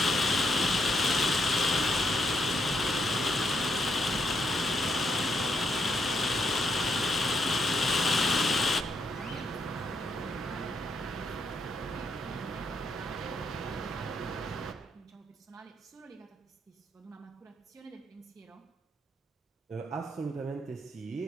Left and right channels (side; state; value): both; normal; correlation 0.77